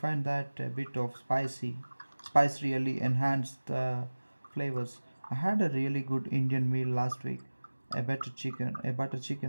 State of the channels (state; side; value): inverted; both; correlation -1.00